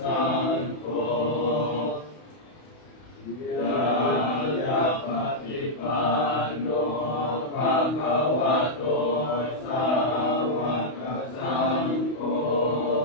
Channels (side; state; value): right; late; 32 ms